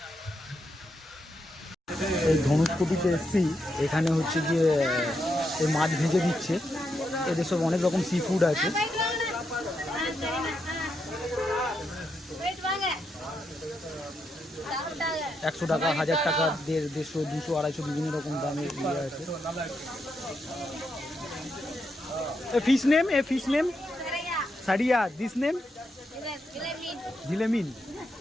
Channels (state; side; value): normal; both; correlation 0.82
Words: এই ধনুষকোটিতে এসছি, এখানে হচ্ছে গিয়ে এই মাছ ভেজে দিচ্ছে। এদের সব অনেক রকম সি ফুড আছে। 100 টাকা, 1000 টাকা, 150, 200, 250 বিভিন্ন রকম দামের ইয়ে আছে। ফিশ নেম সারিয়া, দিস নেম ঝিলেমিন।